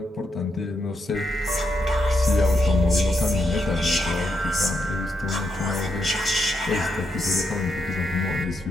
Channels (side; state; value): both; normal; correlation 0.81